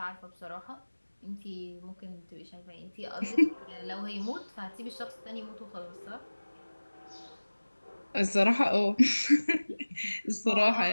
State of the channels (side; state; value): both; inverted; correlation -1.00